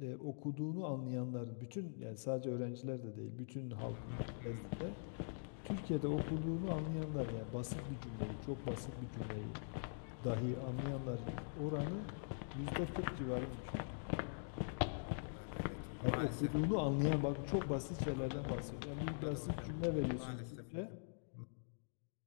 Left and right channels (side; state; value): right; silent; digital silence